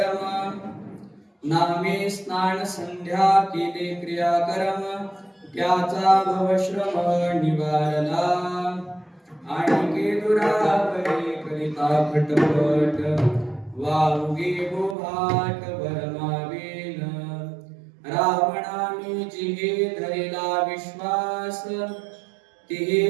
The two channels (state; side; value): drops out; left; at 15.0 s